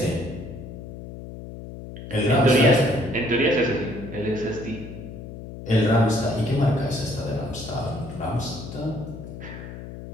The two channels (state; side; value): noise; left; hum, 12 dB below the sound